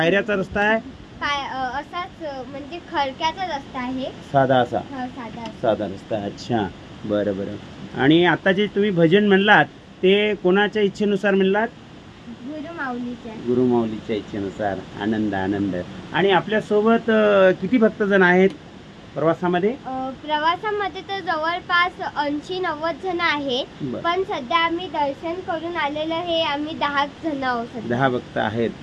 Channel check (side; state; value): both; identical; correlation 1.00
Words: रस्ता आहे? असाच म्हणजे खडक्याचा रस्ता आहे. साधा रस्ता. अच्छा बरं. आणि आता जे तुम्ही भजन म्हणलात ते कोणाच्या इच्छेनुसार म्हणलात? गुरुमाऊलीच्या इच्छेनुसार. आनंद. आणि आपल्या सोबत किती भक्तजण आहेत प्रवासामध्ये? प्रवासामध्ये तर जवळपास 80-90 जण आहेत. पण सध्या आम्ही दर्शन करून आलेलं हे आम्ही 10 जण आहोत. 10 भक्त आहेत.